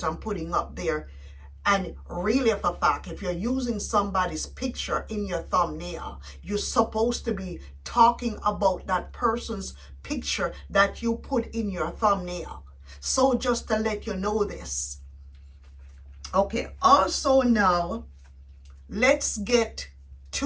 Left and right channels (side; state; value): both; identical; correlation 1.00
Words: putting up there. And really, for a fact, if you're using somebody's picture in your thumbnail, you're supposed to be talking about that person's picture that you put in your thumbnail. So just to let you know this. Okay, also now, let's get